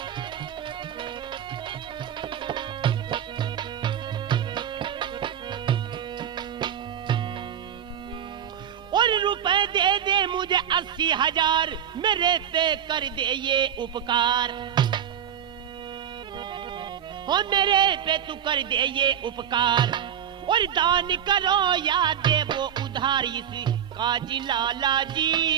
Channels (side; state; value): left; quieter; 9.3 dB